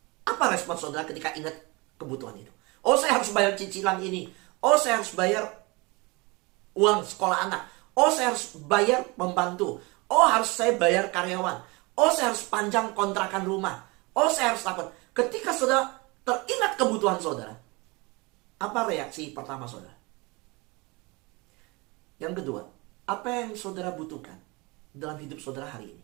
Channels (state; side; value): quieter; left; 26.0 dB